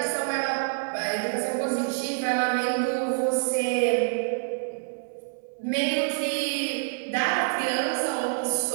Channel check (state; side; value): silent; left; digital silence